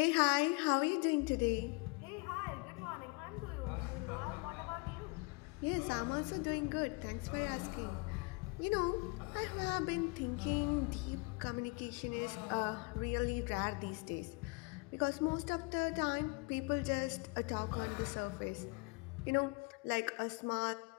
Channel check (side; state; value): right; quieter; 29.1 dB